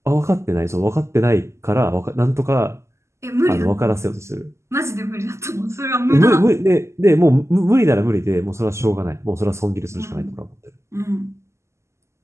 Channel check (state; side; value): late; left; 0.13 ms